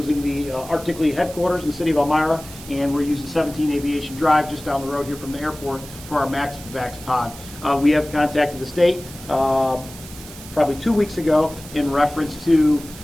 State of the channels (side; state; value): right; noise; hiss, 16 dB below the sound